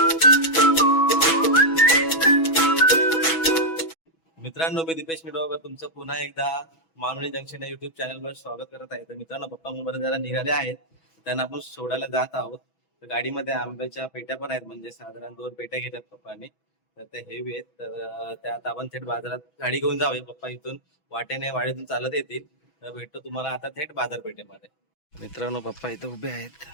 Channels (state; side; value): late; right; 6.1 ms